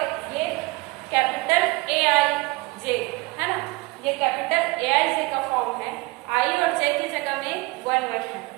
ये कैपिटल ए आई जे है ना, ये कैपिटल ए आई जे का फॉर्म है, आई और जे की जगह में 1 है।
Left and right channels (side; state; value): left; quieter; 24.0 dB